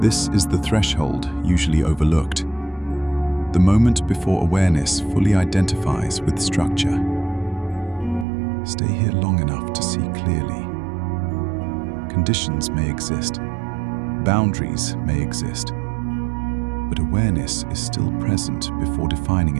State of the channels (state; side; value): drops out; left; at 8.2 s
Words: is the threshold usually overlooked, the moment before awareness fully identifies with structure. Stay here long enough to see clearly. Conditions may exist, boundaries may exist, but awareness is still present before defining